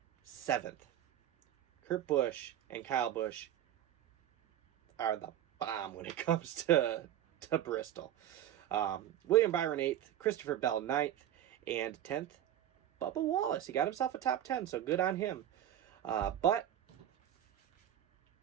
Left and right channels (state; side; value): quieter; left; 11.4 dB